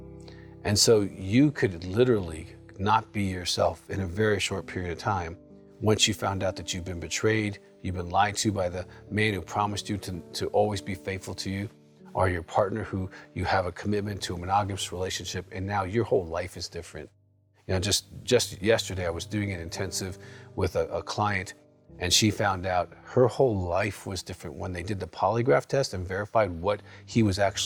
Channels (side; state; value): both; identical; correlation 1.00